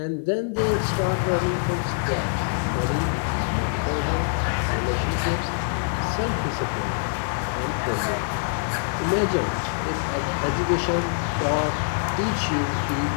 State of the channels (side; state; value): right; silent; 62 dB below the other